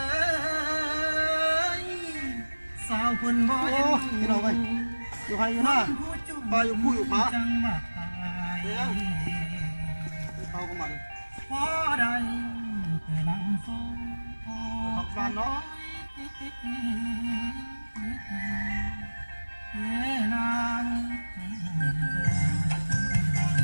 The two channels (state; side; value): inverted; both; correlation -1.00